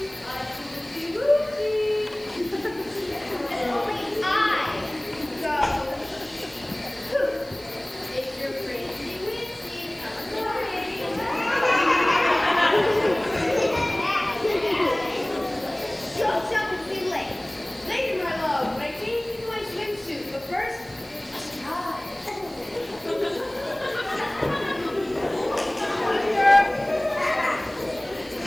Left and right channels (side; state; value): right; noise; hiss, 23 dB below the sound